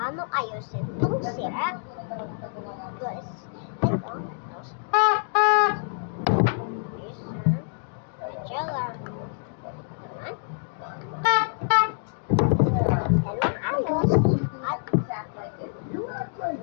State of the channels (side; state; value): right; silent; digital silence